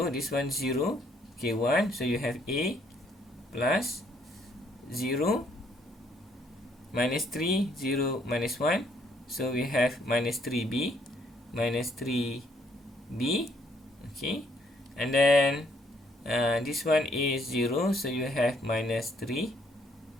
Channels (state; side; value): normal; both; correlation 0.68